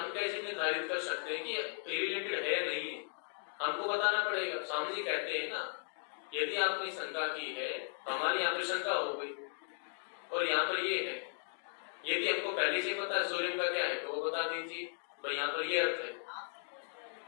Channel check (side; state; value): right; silent; 53 dB below the other